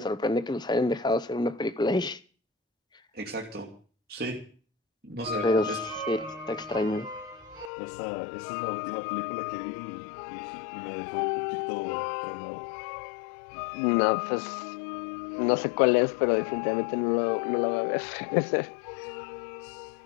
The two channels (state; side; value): drops out; right; at 7.7 s